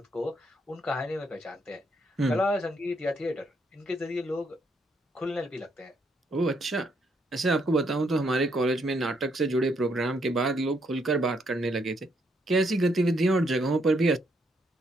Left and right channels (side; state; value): both; normal; correlation 0.74